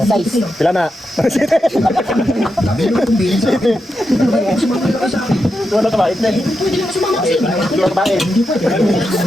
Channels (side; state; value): both; normal; correlation 0.87